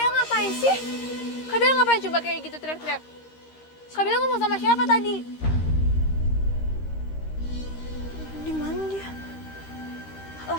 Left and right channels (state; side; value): late; right; 13 ms